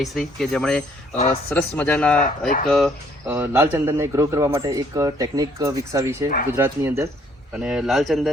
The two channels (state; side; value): normal; both; correlation 0.63